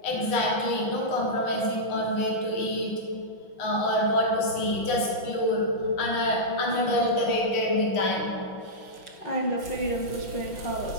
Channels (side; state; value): right; late; 5.9 ms